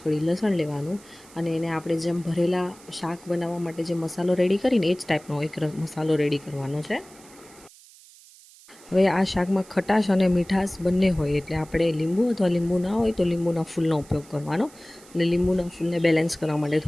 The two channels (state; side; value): noise; right; hiss, 23 dB below the sound